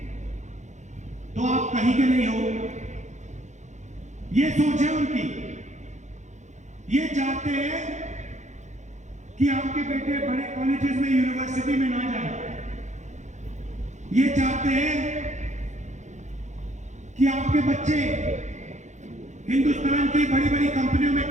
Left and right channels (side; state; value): left; late; 0.34 ms